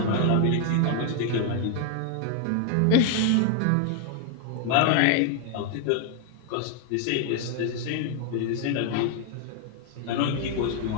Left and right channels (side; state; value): both; different; correlation 0.00